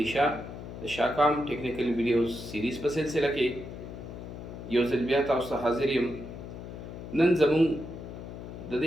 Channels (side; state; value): left; noise; hum, 11 dB below the sound